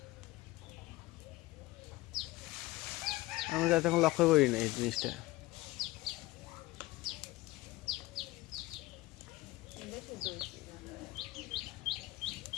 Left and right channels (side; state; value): right; quieter; 19.1 dB